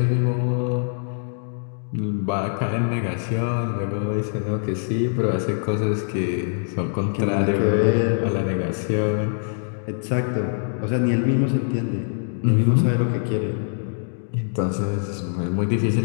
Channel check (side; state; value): right; silent; digital silence